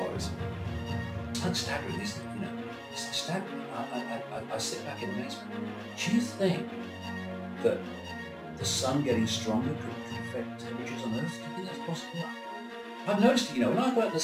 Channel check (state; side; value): identical; both; correlation 1.00